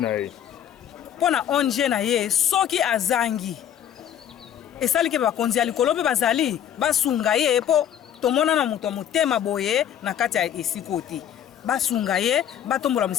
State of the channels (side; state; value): right; quieter; 10.0 dB